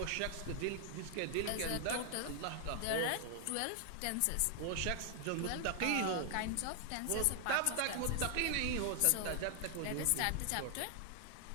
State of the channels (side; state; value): both; different; correlation 0.00